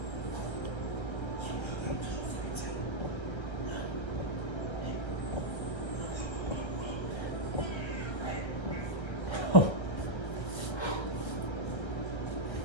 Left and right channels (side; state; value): right; late; 1.3 ms